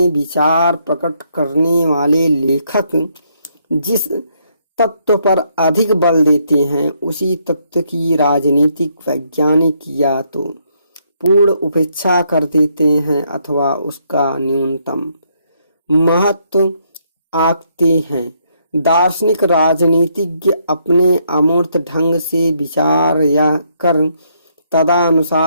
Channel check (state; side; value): inverted; both; correlation -0.73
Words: विचार प्रकट करने वाले लेखक जिस तत्व पर अधिक बल देते हैं, उसी तत्व की राजनीतिक वैज्ञानिक या तो पूर्ण उपेक्षा कर देते हैं अथवा उसका न्यूनतम महत्व आंकते हैं। दार्शनिक राजनीतिज्ञ अपने अमूर्त ढंग से विचार या कर